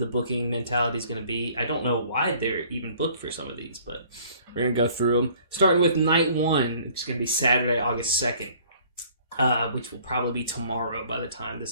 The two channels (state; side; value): inverted; both; correlation -0.55